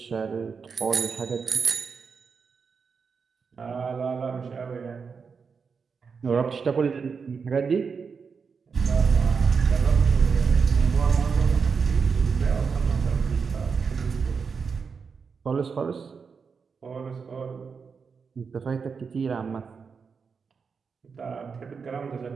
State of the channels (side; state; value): left; quieter; 5.6 dB